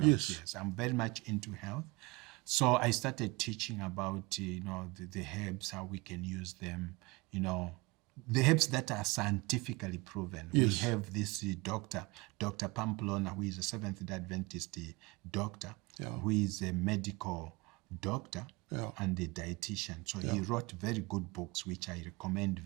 Yes, I'm very much into health. So I started teaching about, the herbs, how we can use them, the herbs that are scientifically proven. Yes. We have this Dr. Pamplona, who is a Seventh-day Adventist doctor, who is a medical doctor and a dietitian. So he wrote very good books, which I recommend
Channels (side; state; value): left; quieter; 24.5 dB